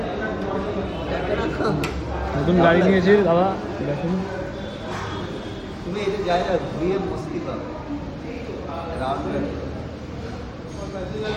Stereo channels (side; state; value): both; identical; correlation 1.00